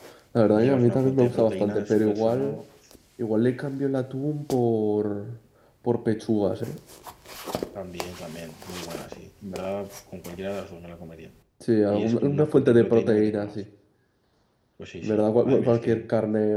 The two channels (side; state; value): both; identical; correlation 1.00